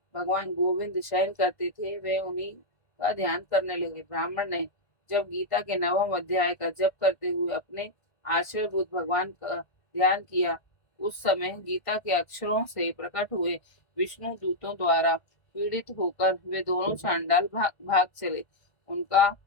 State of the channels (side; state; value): right; late; 1.5 ms